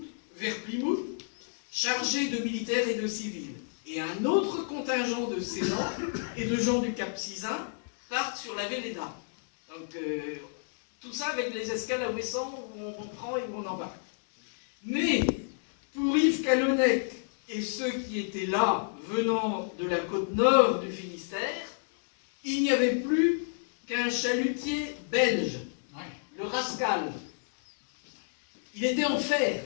vers Plymouth, chargé de militaires et de civils. Et un autre contingent de Céylans et de gens du Cap Sizun partent sur la Véleda. Donc tout ça avec les escales à Ouessant où on prend et où on embarque. Mais pour Yves Calonnec et ceux qui étaient là, venant de la côte nord du Finistère, il n'y avait plus qu'un chalutier belge, le Rascal. Il était en fer.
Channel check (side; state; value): right; silent; digital silence